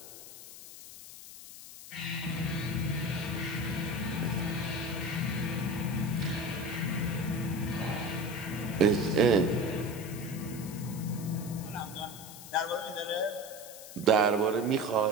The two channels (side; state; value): left; noise; hiss, 14 dB below the sound